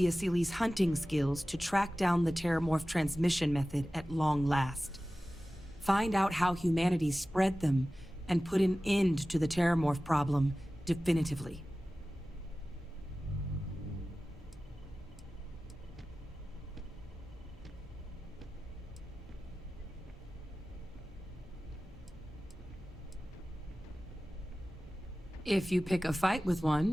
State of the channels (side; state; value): both; normal; correlation 0.96